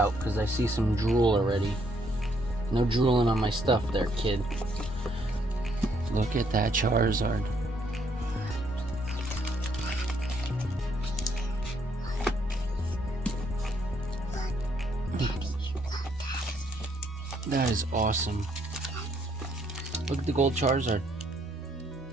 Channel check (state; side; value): normal; both; correlation 0.70